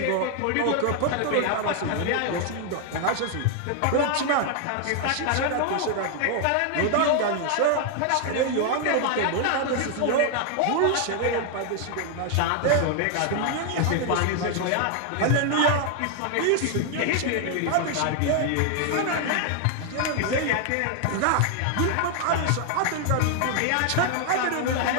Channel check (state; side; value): different; both; correlation 0.00